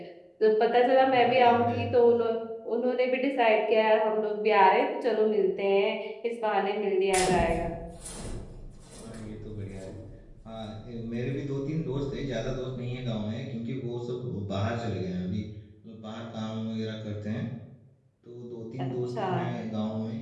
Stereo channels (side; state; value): both; identical; correlation 1.00